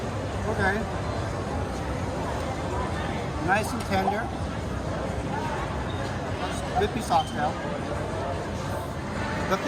Okay. Nice and tender. Good piece of oxtail. The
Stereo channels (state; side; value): identical; both; correlation 1.00